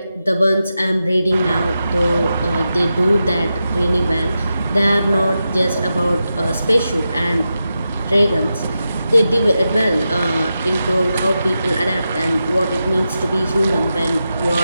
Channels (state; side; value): inverted; both; correlation -0.90